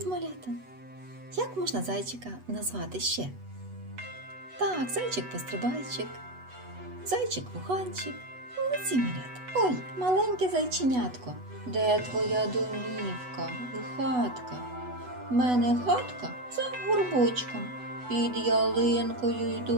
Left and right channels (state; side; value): late; left; 8.1 ms